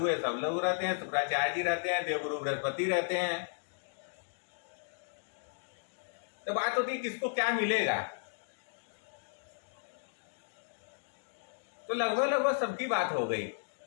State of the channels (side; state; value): right; silent; digital silence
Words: सब लोग रहते हैं, शुक्राचार्य जी रहते हैं, देवगुरु बृहस्पति रहते हैं। तो बात होती है किसको क्या मिलेगा। तो लगभग सबकी बात हो गई।